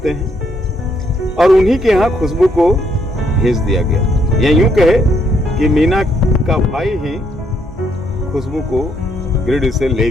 हैं और उन्हीं के यहाँ खुशबू को भेज दिया गया। या यूं कहे कि मीना का भाई ही खुशबू को गिरिडीह से ले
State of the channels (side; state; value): both; normal; correlation 0.72